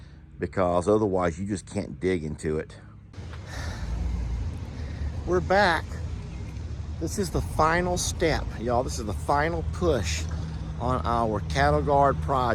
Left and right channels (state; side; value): identical; both; correlation 1.00